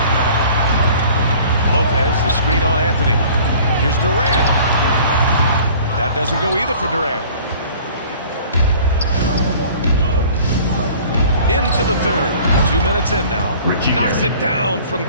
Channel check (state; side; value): inverted; both; correlation -0.49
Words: Lopez, the screen on Anthony. Here's Durant. That doesn't go either for Durant. Into the third. 2 minutes in now. Knocks it down from